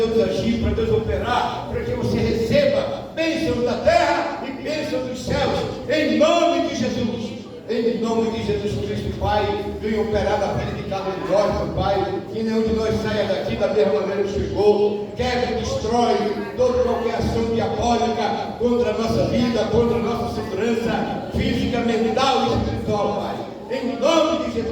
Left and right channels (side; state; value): both; identical; correlation 1.00